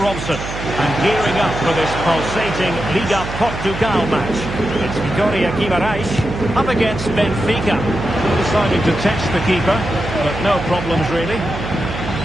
And gearing up for this pulsating Liga Portugal match, it's Vitória Guimarães up against Benfica. Deciding to test the keeper, but no problems really.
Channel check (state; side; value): noise; right; hum, 8 dB below the sound